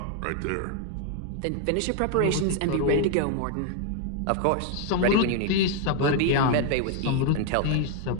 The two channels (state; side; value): different; both; correlation 0.00